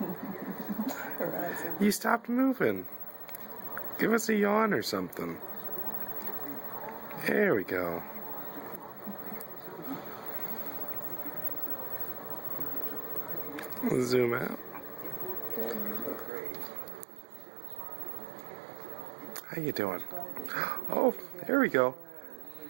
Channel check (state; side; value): drops out; left; at 16.3 s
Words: You stopped moving. Give us a yawn or something. There we go. We'll zoom out. How you doing? Oh, there we go.